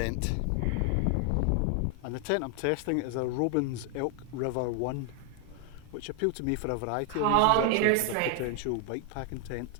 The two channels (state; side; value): different; both; correlation 0.00